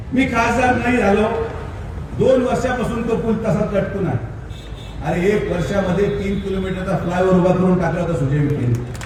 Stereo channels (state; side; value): identical; both; correlation 1.00